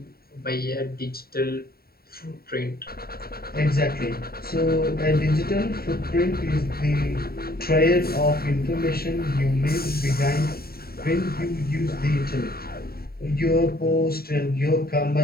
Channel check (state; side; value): late; right; 0.44 ms